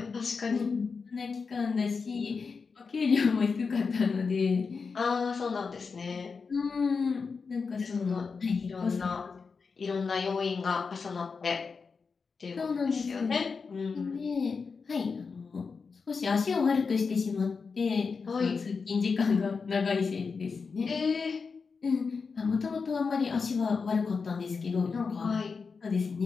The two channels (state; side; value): quieter; right; 5.0 dB